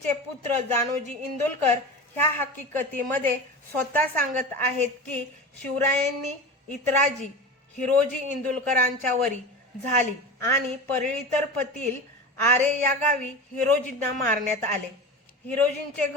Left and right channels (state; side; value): normal; both; correlation 0.29